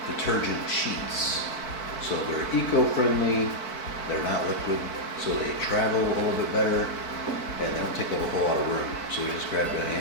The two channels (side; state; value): right; late; 4.5 ms